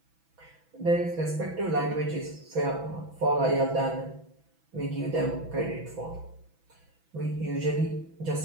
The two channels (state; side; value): late; left; 6.1 ms